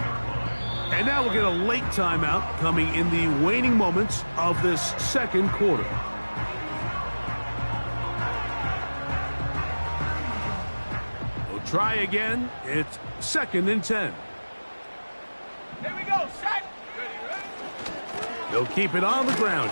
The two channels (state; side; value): inverted; both; correlation -1.00